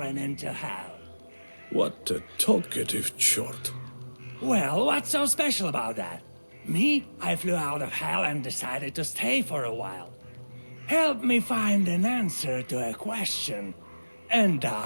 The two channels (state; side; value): inverted; both; correlation -1.00